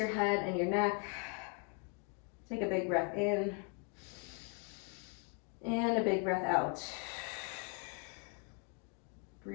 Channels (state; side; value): quieter; right; 38.1 dB